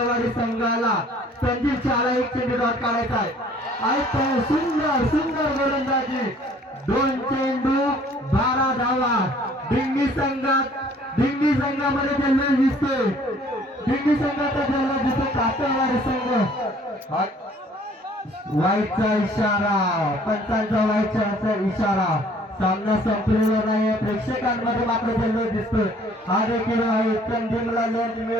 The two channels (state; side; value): normal; both; correlation 0.56